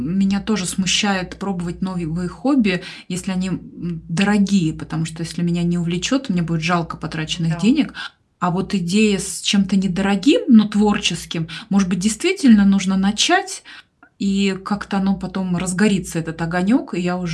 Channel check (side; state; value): both; identical; correlation 1.00